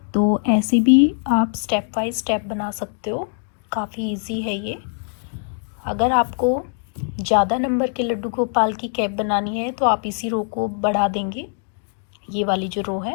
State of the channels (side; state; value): right; silent; 64 dB below the other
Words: तो ऐसे भी आप स्टेप बाय स्टेप बना सकते हो, काफ़ी इजी है ये। अगर आपको ज़्यादा नंबर के लड्डू गोपाल की कैप बनानी है तो आप इसी रो को बढ़ा देंगे, ये वाली जो रो